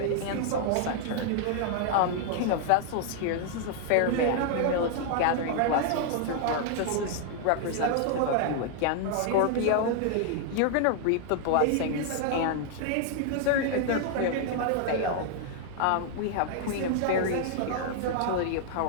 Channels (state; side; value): different; both; correlation 0.00